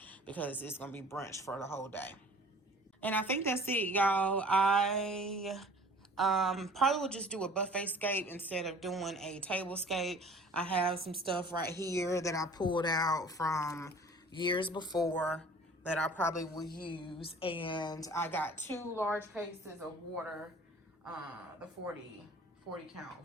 because it's going to be brunch for the whole day. And I think that's it, y'all. I probably will just do a buffet scape instead of doing a table scape. I have some stuff right here that I pulled out from years before that I probably will use. And I got 2 large cases of water, the 40 count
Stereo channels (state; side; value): normal; both; correlation 0.48